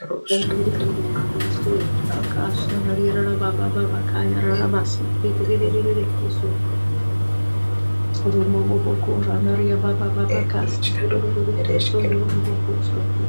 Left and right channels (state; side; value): inverted; both; correlation -1.00